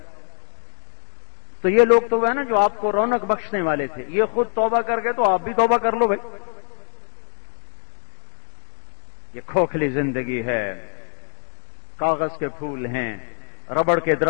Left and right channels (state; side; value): silent; right; 59 dB below the other